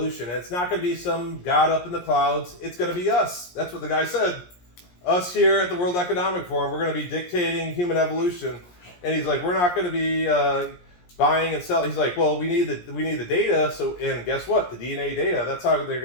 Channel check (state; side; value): late; right; 17 ms